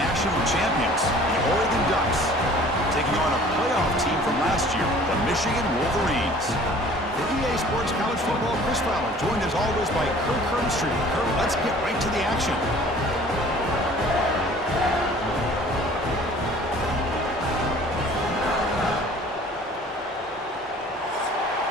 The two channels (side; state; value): both; normal; correlation 0.50